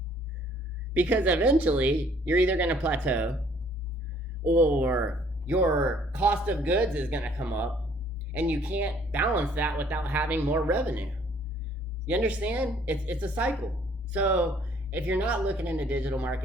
Because eventually you're either going to plateau, or your cost of goods is going to come up and you can't balance that without having more revenue. You understand? It's a cycle. So if you're not looking into digital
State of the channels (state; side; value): normal; both; correlation 0.60